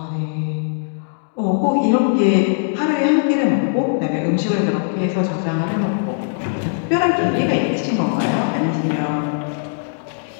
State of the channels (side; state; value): right; silent; digital silence